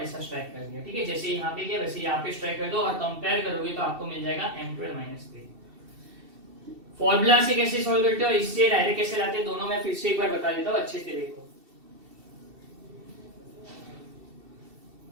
स्ट्राइक कर दिया। ठीक है, जैसे यहाँ पे किया वैसे यहाँ पे स्ट्राइक कर दो और कंपेयर करोगे तो आपको मिल जाएगा M12 -3। फॉर्मूला से कैसे सॉल्व करते हो और इससे डायरेक्ट कैसे लाते हैं, दोनों मैं फिर से एक बार बता देता हूँ, अच्छे से देखो।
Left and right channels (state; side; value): late; left; 2.7 ms